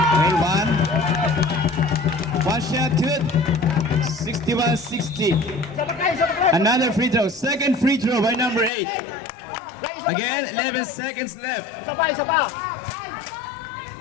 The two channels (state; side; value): drops out; right; at 8.7 s